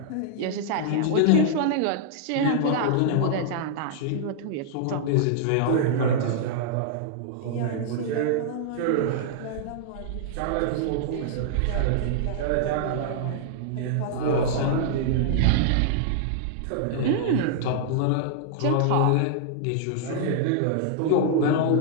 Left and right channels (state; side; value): different; both; correlation -0.01